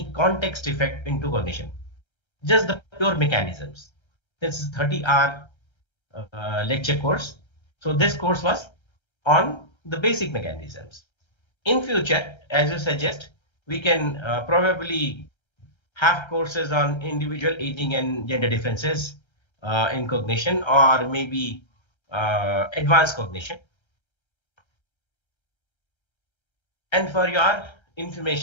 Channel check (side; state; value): right; late; 1.3 ms